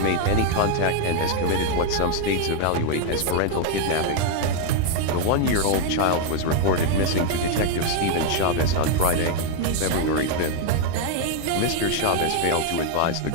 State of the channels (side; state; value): both; different; correlation 0.00